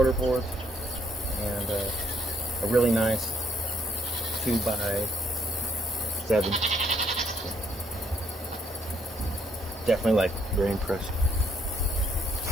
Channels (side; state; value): both; normal; correlation 0.68